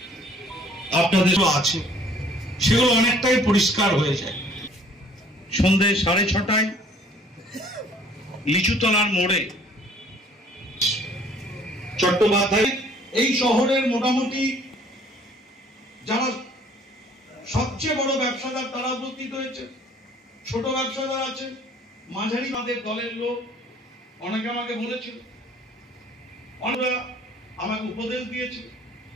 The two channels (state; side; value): normal; both; correlation 0.56